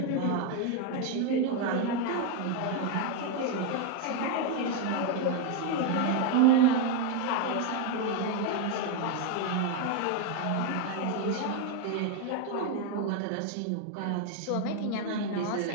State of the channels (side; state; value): both; different; correlation 0.01